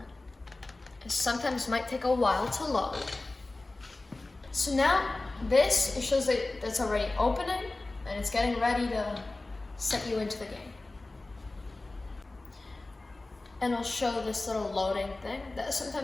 It sometimes might take a while to load. So now, it shows that it's already opening, and it's getting ready to set you into the game. And it'll show this little loading thing that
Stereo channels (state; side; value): quieter; right; 3.1 dB